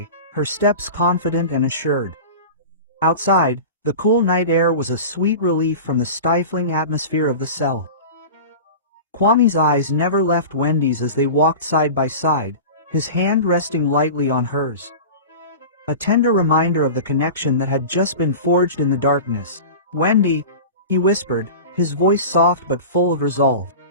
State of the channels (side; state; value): both; inverted; correlation -0.33